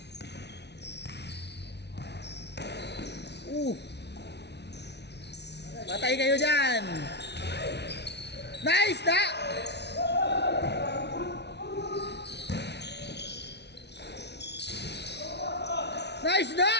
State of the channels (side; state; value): right; late; 0.50 ms